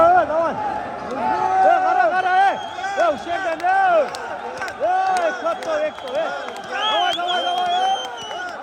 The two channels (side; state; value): both; identical; correlation 1.00